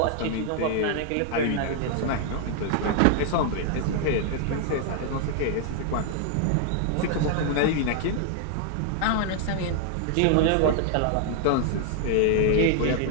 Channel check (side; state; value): both; different; correlation 0.00